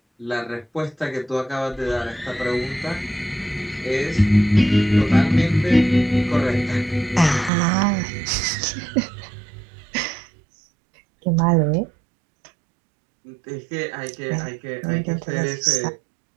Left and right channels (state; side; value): drops out; left; at 7.5 s